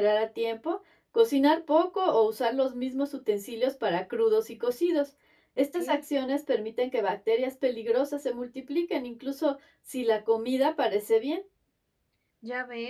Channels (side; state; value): both; identical; correlation 1.00